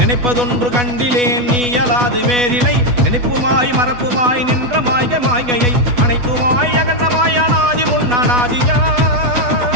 கண்டிலேன் நீ அலாது வேறிலை நினைப்புமாய் மறப்புமாய் நின்ற மாய்க மாய்கையை அனைத்துமாய் அகண்டமாய் அனாதி முன்னாதியா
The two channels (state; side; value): late; left; 8.2 ms